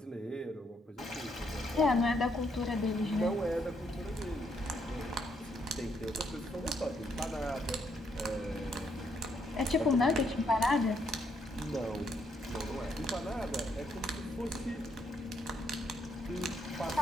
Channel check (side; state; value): both; normal; correlation 0.74